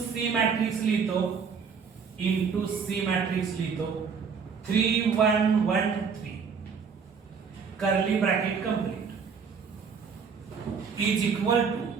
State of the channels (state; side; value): quieter; left; 6.0 dB